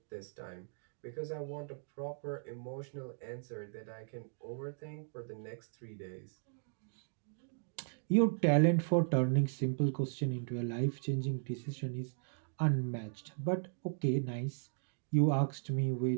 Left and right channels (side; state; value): left; silent; digital silence